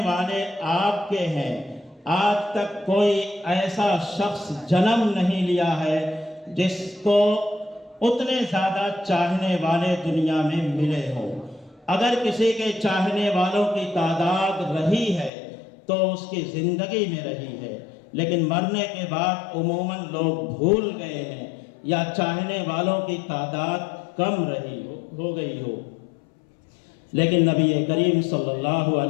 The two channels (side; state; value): right; drops out; at 15.3 s